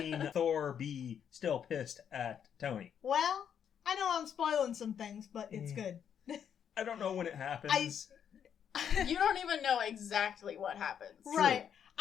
Thor be still pissed at Tony. Well, I know I'm spoiling some things, but it's good. I don't know when it happens. You don't even know exactly what happens. Right.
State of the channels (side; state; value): right; quieter; 8.4 dB